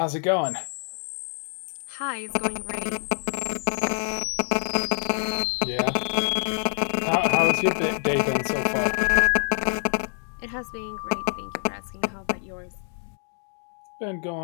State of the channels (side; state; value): right; silent; digital silence